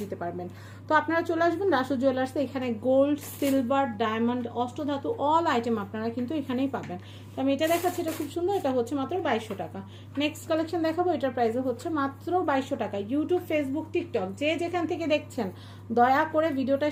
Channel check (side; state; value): both; identical; correlation 1.00